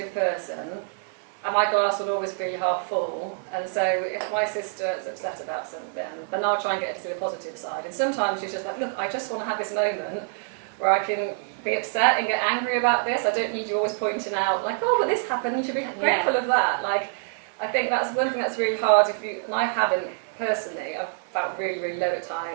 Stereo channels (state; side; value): silent; left; digital silence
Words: person, and my glass will always be half full. And so if my sister is upset about something, then I'll try and get her to see the positive side. And sometimes she's just like, look, I just want to have this moment where I can be upset and get angry about this. I don't need you always pointing out, like, oh, but this happened, you should be grateful of that. Like, I think that's one thing that's really hard and I haven't personally, I've felt really, really low at